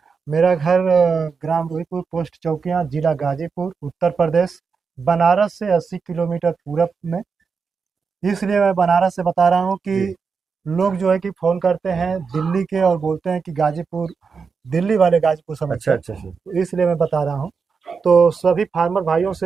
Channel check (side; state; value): left; quieter; 5.4 dB